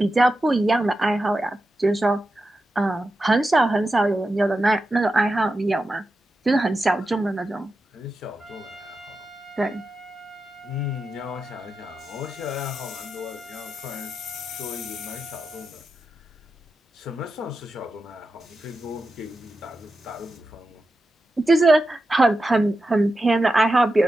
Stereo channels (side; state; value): both; normal; correlation 0.90